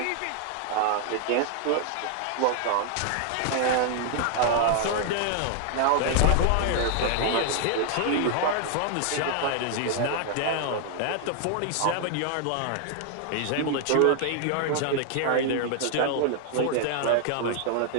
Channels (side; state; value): both; different; correlation 0.00